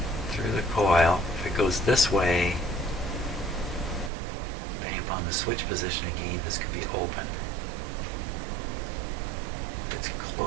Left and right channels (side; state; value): left; drops out; at 4.1 s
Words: if it goes this way, depending upon the switch position again, this could be open. If it's